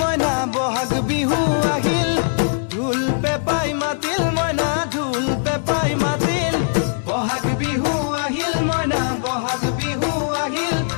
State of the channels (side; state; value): right; silent; digital silence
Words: মইনা বহাগ বিহু আহিল ঢোল পেপাই মাতিল মইনা ঢোল পেপাই মাতিল বহাগ বিহু আহিল মইনা বহাগ বিহু আহিল